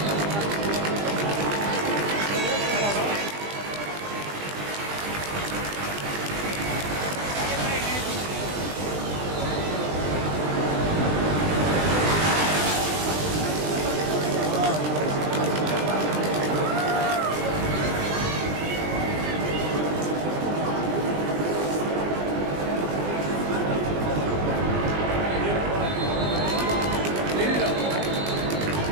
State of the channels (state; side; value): late; left; 20 ms